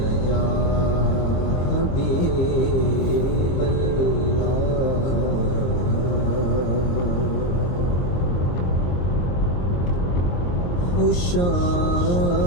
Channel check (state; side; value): late; right; 22 ms